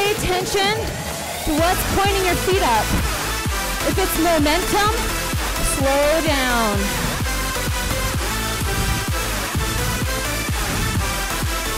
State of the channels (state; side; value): identical; both; correlation 1.00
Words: attention to what's pointing your feet up. If it's momentum, slow down.